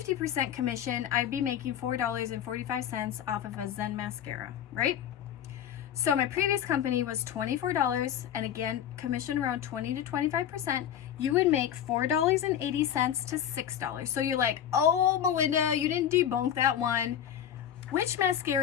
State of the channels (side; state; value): right; quieter; 9.8 dB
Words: commission, I'd be making $4.45 off of a Zen mascara, right? So my previous company was $24, and again, commission around 20 to 25%. You would make $4.80 to $6. So you're like, oh, Melinda, you didn't debunk that one. Which